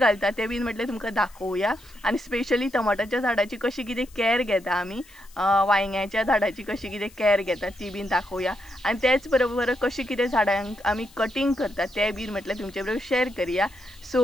तें बीन म्हटलें तुमकां दाखोवया। आनी स्पेशली टमाटाच्या झाडाची कशी कितें कॅर घेता आमी, वांयग्याच्या झाडाची कशी कितें कॅर घेता ती बीन दाखोवया। आनी तेच बरोबर कशी कितें झाडांक आमी कटिंग करता तें बीन म्हटलें तुमचे बरोबर शेअर करूया।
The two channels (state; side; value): noise; left; hiss, 25 dB below the sound